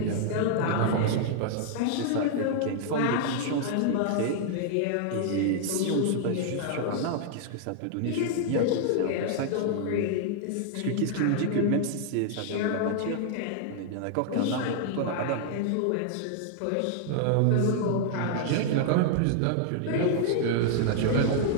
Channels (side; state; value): both; different; correlation -0.01